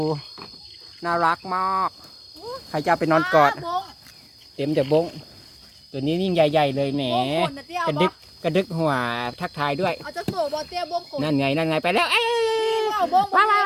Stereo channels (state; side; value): identical; both; correlation 1.00